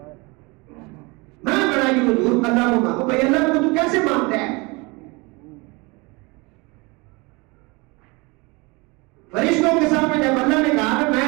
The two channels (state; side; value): quieter; left; 26.5 dB